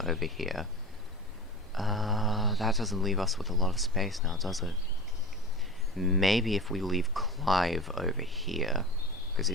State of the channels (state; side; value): normal; both; correlation 0.30